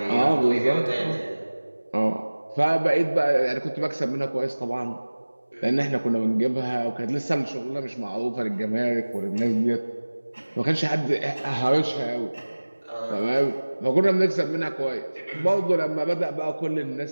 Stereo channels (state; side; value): inverted; both; correlation -1.00